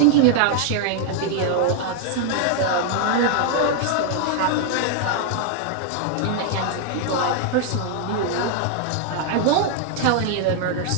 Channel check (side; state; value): both; different; correlation 0.00